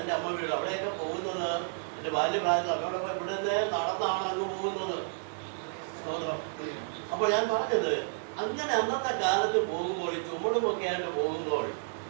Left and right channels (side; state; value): left; silent; 57 dB below the other